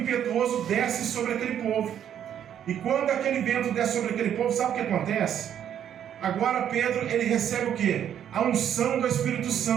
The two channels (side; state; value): left; quieter; 9.7 dB